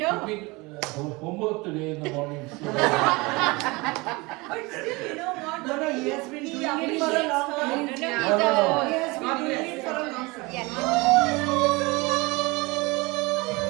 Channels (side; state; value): left; quieter; 24.6 dB